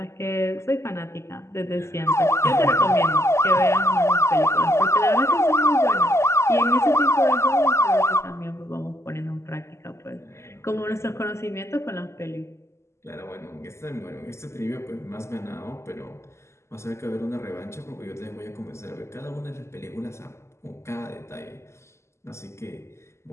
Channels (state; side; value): late; right; 0.13 ms